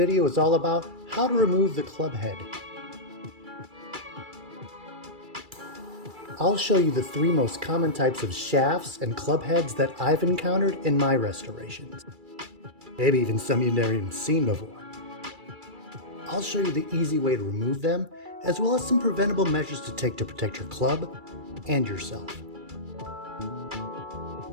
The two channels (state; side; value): late; left; 2.3 ms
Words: is all about how to remove the club head. I'll show you the three most common types of shafts and club heads that I've encountered in my restorations. Maybe even some you've never even seen before. I'll show you the easy way to remove them, as well as some preventable measures to take to protect your club and yourself.